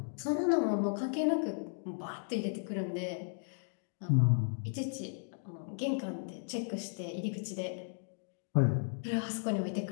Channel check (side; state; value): right; silent; digital silence